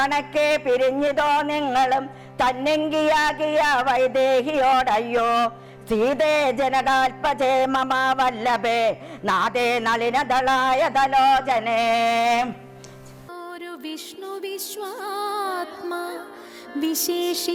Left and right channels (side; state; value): both; identical; correlation 1.00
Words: പിരിഞ്ഞിതോ നിങ്ങളും തന്നെങ്കിയാകിയ വൈദേഹിയോടയ്യോ. സീതേ ജനകാൽപജേ മമ വല്ലഭേ നാദേ നളിനദളായ ദലോചനേ. ഒരു വിഷ്ണു വിശ്വാത്മാ